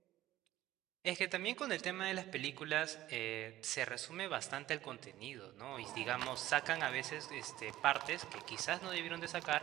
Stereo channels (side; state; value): left; quieter; 14.9 dB